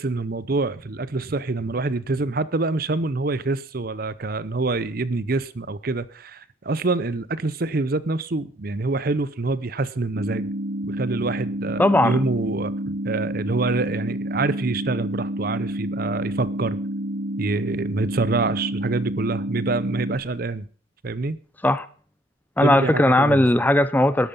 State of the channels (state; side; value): normal; both; correlation 0.61